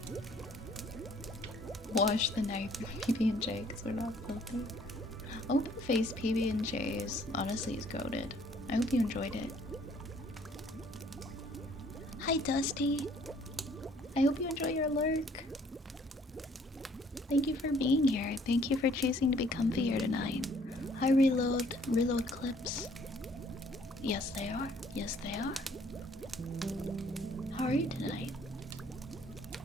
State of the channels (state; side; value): normal; both; correlation 0.60